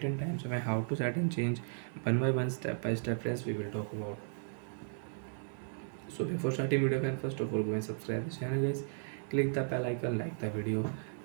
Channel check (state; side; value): silent; left; digital silence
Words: and time, so how to set and change one by one, step by step friends we will talk about. So before starting video friends, first of all go and subscribe the channel guys, click the bell icon, like the video.